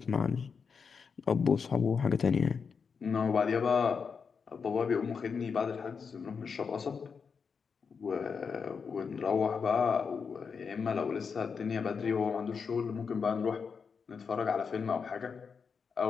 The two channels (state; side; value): quieter; right; 5.8 dB